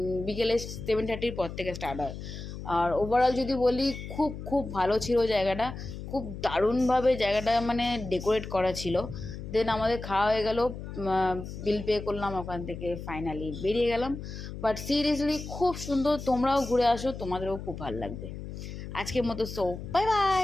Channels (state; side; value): noise; left; hum, 9 dB below the sound